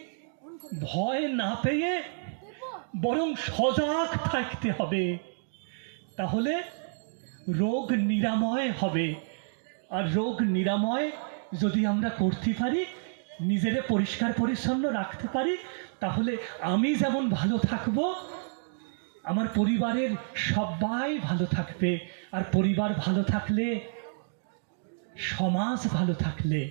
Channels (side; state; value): left; silent; digital silence